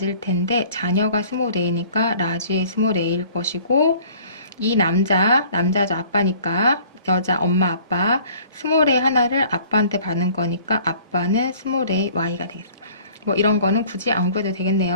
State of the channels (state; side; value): inverted; both; correlation -0.52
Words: 텐데 자녀가 스몰 a니까 라지 a 스몰 a일 것이고, 이 남자죠. 아빠니까 여자 엄마 아빠 스몰 a 하나를 아빠한테 받는 거니까 아빠는 스몰 a y가 되겠습니다. 뭐 이런 거는 굳이 안 구해도